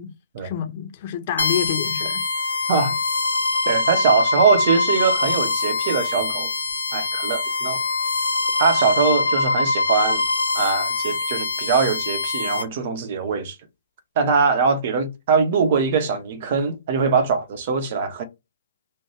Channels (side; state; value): both; inverted; correlation -0.59